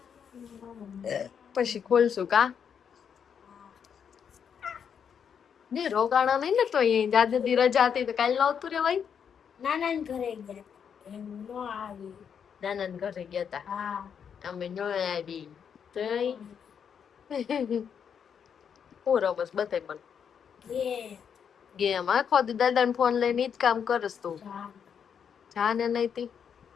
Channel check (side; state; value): right; quieter; 7.5 dB